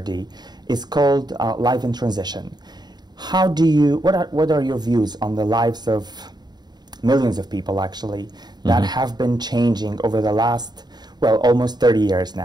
is called Life in Transition. What are your views on the lives of millions of people, actually, that have been changing over the last, well, almost 30 years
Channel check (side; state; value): left; late; 0.20 ms